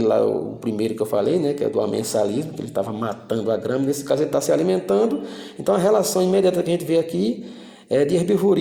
lá, o primeiro que eu falei, né, que é do amensalismo, que ele estava matando a grama. Nesse caso ele está se alimentando. Então a relação imediata que a gente vê aqui é de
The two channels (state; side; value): identical; both; correlation 1.00